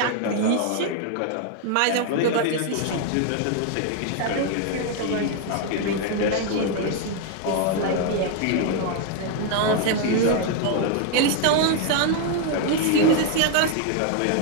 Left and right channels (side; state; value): both; different; correlation 0.00